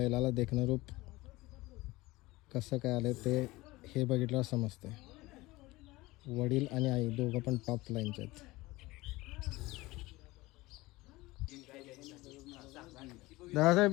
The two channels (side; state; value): right; quieter; 20.3 dB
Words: देखणं रूप कसं काय आलं ते हे बघितल्यावर समजते. वडील आणि आई दोघं पण टॉप लाईनचे आहेत.